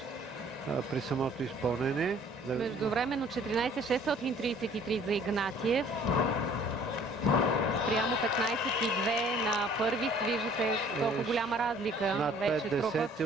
при самото изпълнение. Междувременно 14,633 за Игнатиев. Спрямо 15,2 на първи. Виждате колко голяма разлика над вече 5 трупат десети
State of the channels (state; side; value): normal; both; correlation 0.55